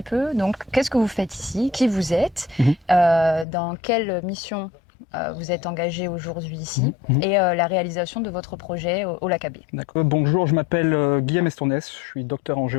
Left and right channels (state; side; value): drops out; right; at 3.5 s